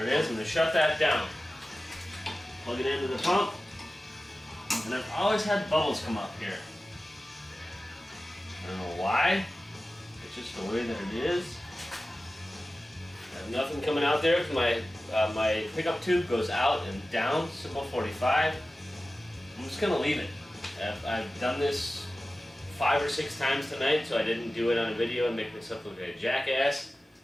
it is. I'm gonna shut that down. Plug it into the pump. And I've always had bubbles come up here. I don't know why. It's just the way that it is. I have nothing coming out there because my pickup tube goes out and down, simple 45. I'm just gonna leave it. I've done this 5 or 6 times tonight, so I didn't do it on a video and make myself look like a jackass.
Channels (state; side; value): normal; both; correlation 0.95